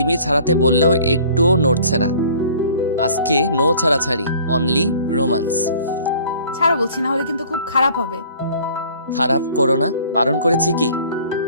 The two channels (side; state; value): both; inverted; correlation -0.51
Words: ছাড়াতে বললেও একটুও নড়ছে না। আজকে নো ছাড়াছাড়ি, অনলি রোমান্স। ছাড়ো বলছি, না হলে কিন্তু খুব খারাপ হবে। খারাপ করো না, বারণ করেছি কি?